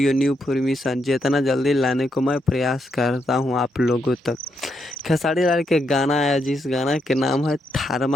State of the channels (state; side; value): normal; both; correlation 0.80